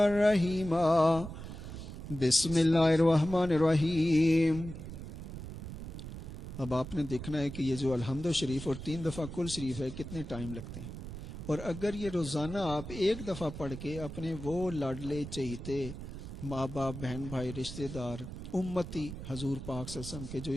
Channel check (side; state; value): right; noise; rumble, 10 dB below the sound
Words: رَحِيمًا۔ بسم اللہ الرحمن الرحیم۔ اب آپ نے دیکھنا ہے کہ یہ جو الحمد شریف اور 3 دفعہ کل شریف ہے کتنے ٹائم لگتے ہیں، اور اگر یہ روزانہ آپ 1 دفعہ پڑھ کے اپنے وہ لاڈلے چہیتے ماں باپ، بہن بھائی، رشتہ دار، امتی حضور پاک صلی اللہ علیہ وسلم کے جو